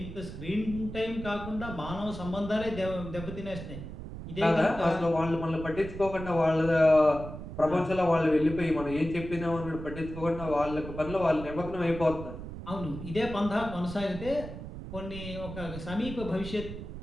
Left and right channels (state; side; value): noise; right; rumble, 10 dB below the sound